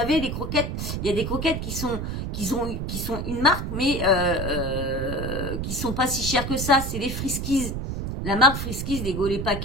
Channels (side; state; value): right; noise; rumble, 4 dB below the sound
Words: les croquettes, il y a des croquettes qui sont une marque, mais qui sont pas si chères que ça, c'est les Friskies. La marque Friskies, les